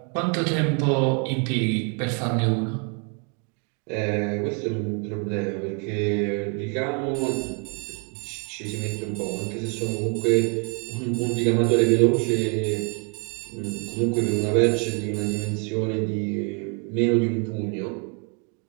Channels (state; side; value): quieter; left; 37.7 dB